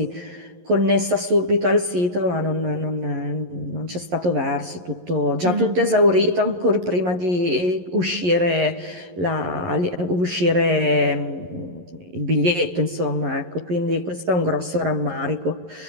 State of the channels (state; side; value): late; left; 11 ms